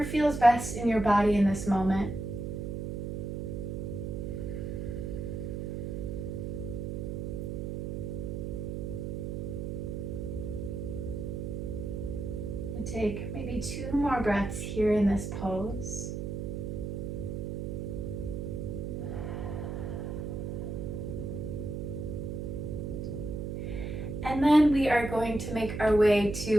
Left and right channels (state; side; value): noise; right; hum, 4 dB below the sound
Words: feels best in your body in this moment. And take maybe 2 more breaths here in this pose. And then we are going to make our way